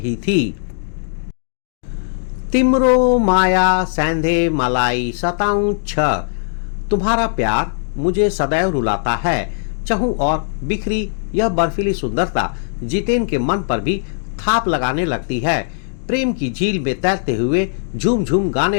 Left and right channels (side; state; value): right; silent; digital silence